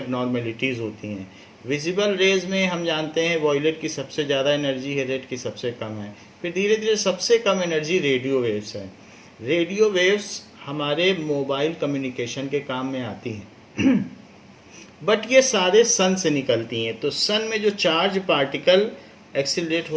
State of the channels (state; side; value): identical; both; correlation 1.00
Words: होती हैं। विजिबल रेज में हम जानते हैं वॉयलेट की सबसे ज़्यादा एनर्जी है, रेड की सबसे कम है। फिर धीरे धीरे सबसे कम एनर्जी रेडियो वेव्स है। रेडियो वेव्स हमारे मोबाइल कम्युनिकेशन के काम में आती हैं बट ये सारे सन से निकलती हैं। तो सन में जो चार्ज पार्टिकल एक्सिलरेट